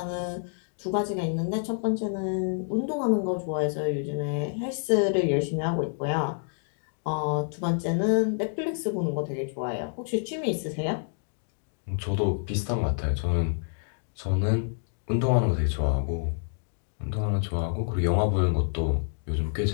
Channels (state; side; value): silent; right; digital silence